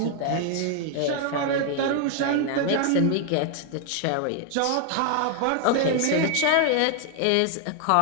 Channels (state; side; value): different; both; correlation 0.00